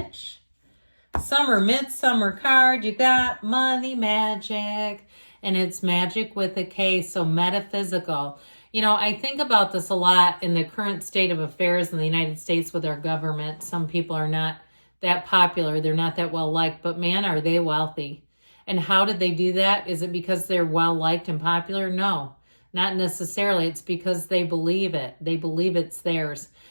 Summer, midsummer card. You got money magic, and it's magic with a K, so metaphysical. You know, I think about this a lot in the current state of affairs in the United States with our government. Some people are not that popular. They're not that well liked, but man, are they wealthy. And how did they do that? Is it because they're well liked and popular? No, not necessarily. It's because they believe it. They believe it's theirs.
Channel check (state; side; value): inverted; both; correlation -1.00